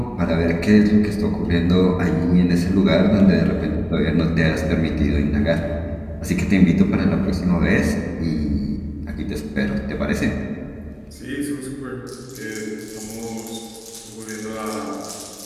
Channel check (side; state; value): both; identical; correlation 1.00